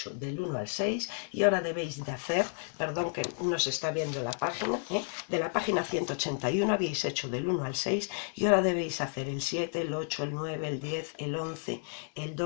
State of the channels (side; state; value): right; silent; 57 dB below the other